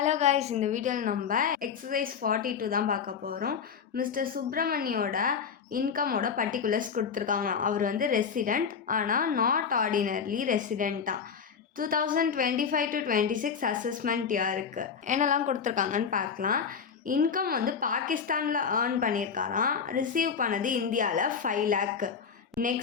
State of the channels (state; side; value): quieter; right; 6.5 dB